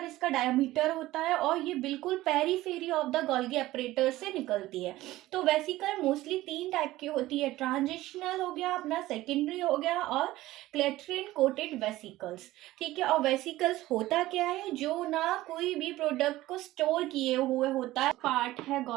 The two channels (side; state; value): left; quieter; 16.7 dB